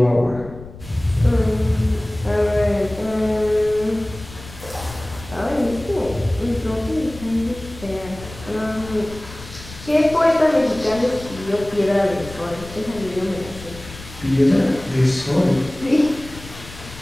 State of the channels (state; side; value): noise; left; rumble, 16 dB below the sound